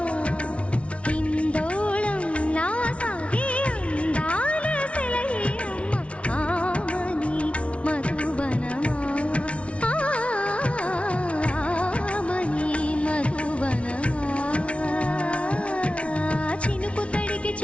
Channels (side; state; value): right; late; 0.062 ms